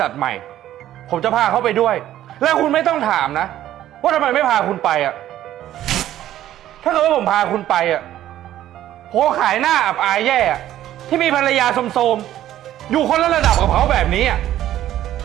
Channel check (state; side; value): quieter; left; 12.7 dB